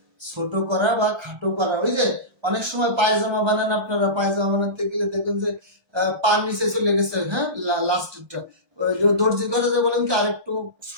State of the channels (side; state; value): left; late; 1.3 ms